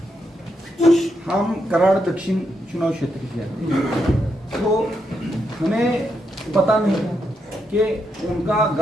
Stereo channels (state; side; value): normal; both; correlation 0.82